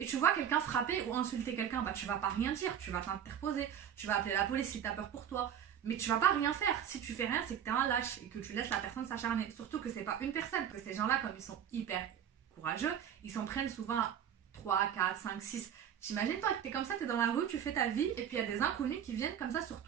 tu vois quelqu'un frapper ou insulter quelqu'un. Bah tu vas pas rien dire, tu vas t'interposer, tu vas appeler la police si t'as peur pour toi. Mais tu vas pas rien faire. Si tu fais rien, c'est que t'es un lâche et que tu laisses la personne s'acharner. Surtout que c'est pas une personne, que ces gens-là, comme ils sont hyper courageux, ils s'en prennent souvent 3, 4, 5, 6. T'imagines toi que t'es comme ça, t'es dans la rue, tu fais ta vie, et puis il y a des inconnus qui viennent comme ça sur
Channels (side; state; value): left; quieter; 9.2 dB